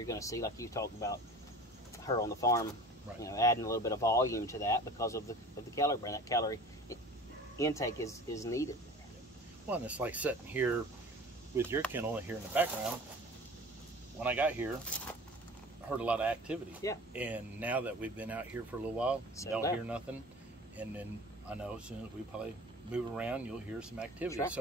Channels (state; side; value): normal; both; correlation 0.40